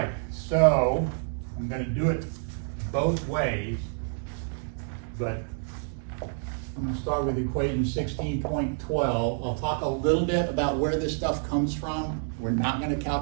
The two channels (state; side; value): silent; left; 59 dB below the other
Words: so I'm going to do it both ways, but I'm going to start with equation 16.12. I'll talk a little bit about where this stuff comes from. We're not going to